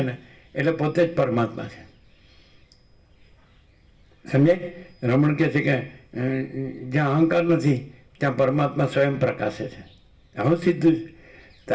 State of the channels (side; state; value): both; identical; correlation 1.00